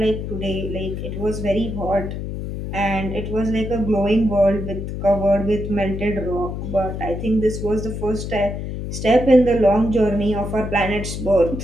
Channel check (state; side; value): noise; left; hum, 6 dB below the sound